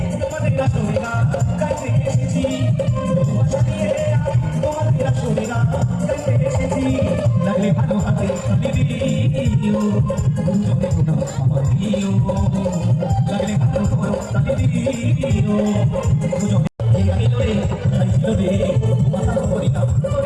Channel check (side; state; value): both; identical; correlation 1.00